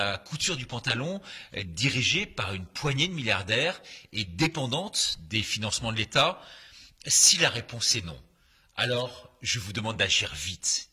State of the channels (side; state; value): both; identical; correlation 1.00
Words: couture du pantalon, dirigée par une poignée de milliardaires et dépendante des financements de l'État? Si la réponse est non, alors je vous demande d'agir vite,